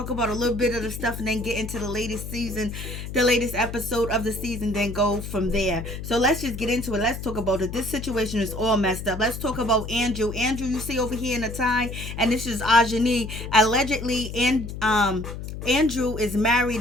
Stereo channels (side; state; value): left; noise; hum, 8 dB below the sound